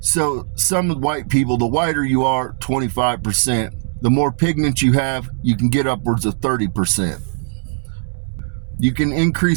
some white people, the whiter you are, 25%, the more pigment you have, you can get upwards of 30%. You can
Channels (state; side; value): silent; left; digital silence